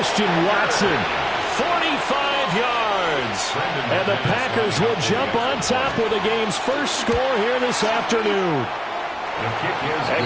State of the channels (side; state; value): both; identical; correlation 1.00